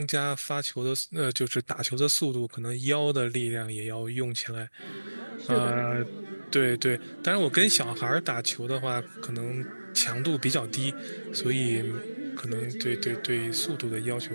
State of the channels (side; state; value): both; inverted; correlation -1.00